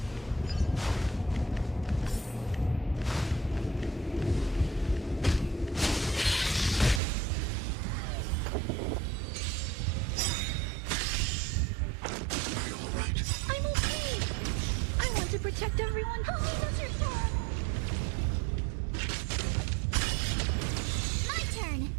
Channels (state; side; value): drops out; left; at 7.0 s